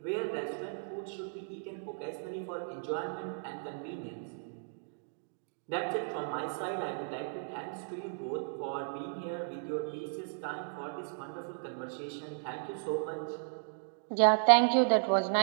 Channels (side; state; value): left; silent; digital silence